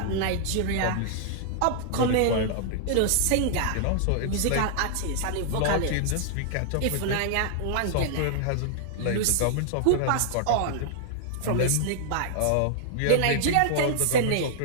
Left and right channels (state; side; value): different; both; correlation -0.01